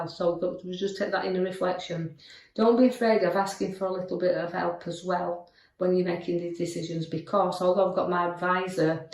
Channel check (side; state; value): both; identical; correlation 1.00